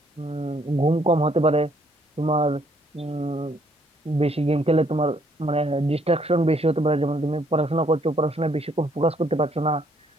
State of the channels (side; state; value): both; normal; correlation 0.67